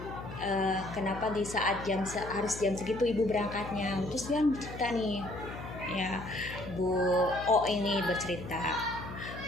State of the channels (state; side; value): noise; left; hum, 11 dB below the sound